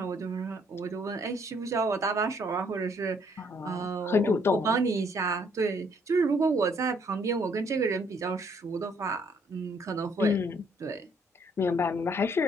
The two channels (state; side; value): normal; both; correlation 0.66